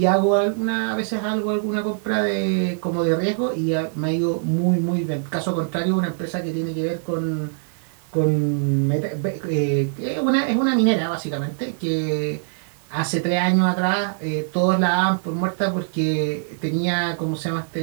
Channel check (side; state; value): left; silent; digital silence